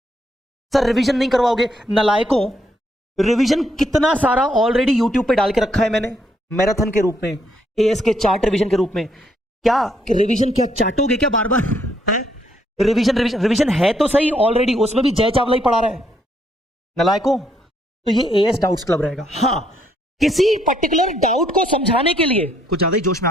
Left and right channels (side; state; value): both; normal; correlation 0.72